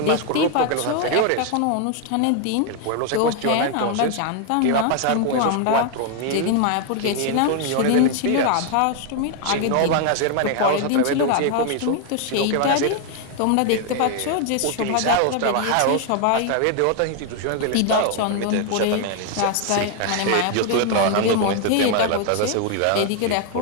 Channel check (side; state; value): both; different; correlation 0.00